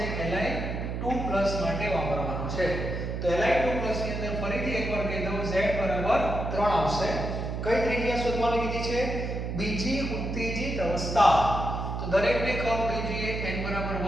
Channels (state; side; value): noise; right; hum, 3 dB below the sound